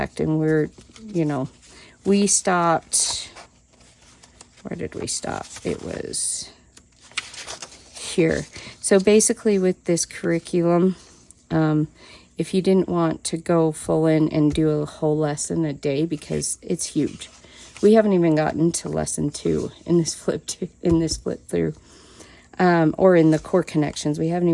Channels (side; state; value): both; identical; correlation 1.00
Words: and we're, you know, we stopped, where did we stop? It was here. So basically with this curriculum, if you didn't want to go full in and do a whole lesson a day, because it's huge. We haven't even gotten to lesson 2 in this flip through, or in the core connections. We haven't